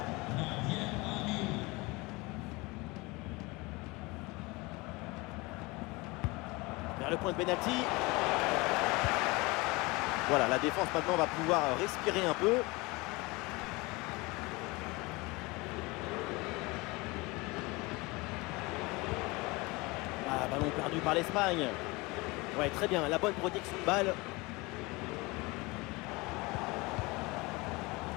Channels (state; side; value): quieter; right; 24.2 dB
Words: Vers le point de pénalty. Voilà, la défense maintenant va pouvoir respirer un peu. Ballon perdu par l'Espagne. Ouais, très bien, la bonne protection de balle.